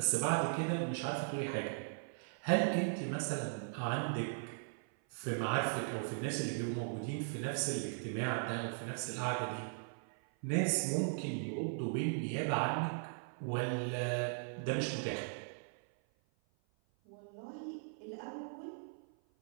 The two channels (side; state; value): left; silent; 52 dB below the other